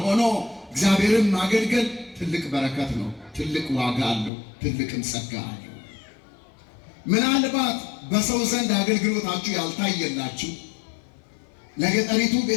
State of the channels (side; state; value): right; drops out; at 4.3 s